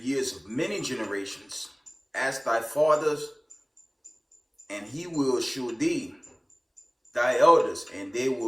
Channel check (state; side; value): identical; both; correlation 1.00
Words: of many generations. Ask thy fathers, and he will shew thee, thy elders, and they